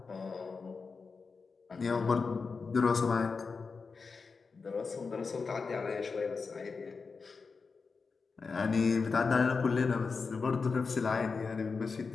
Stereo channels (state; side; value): quieter; right; 4.8 dB